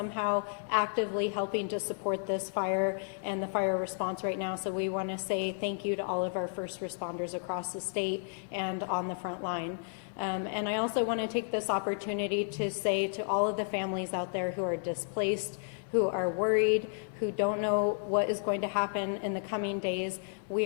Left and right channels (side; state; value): right; silent; 56 dB below the other